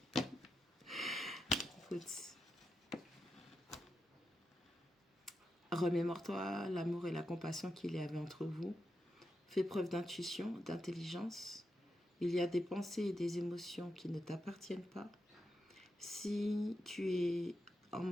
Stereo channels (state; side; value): normal; both; correlation 0.87